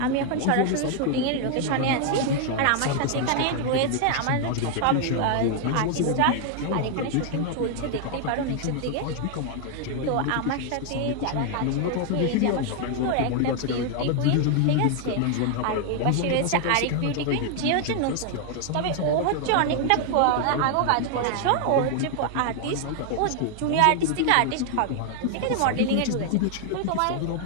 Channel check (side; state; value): both; different; correlation 0.00